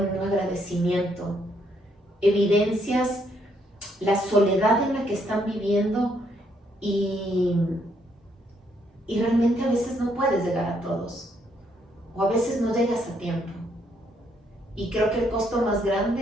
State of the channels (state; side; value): normal; both; correlation 0.72